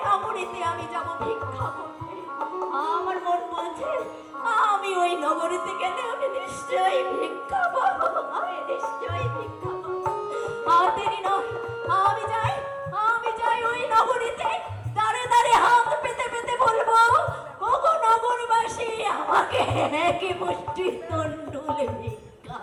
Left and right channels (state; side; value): identical; both; correlation 1.00